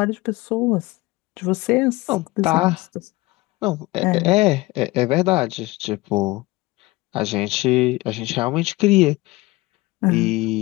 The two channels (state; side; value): quieter; right; 20.8 dB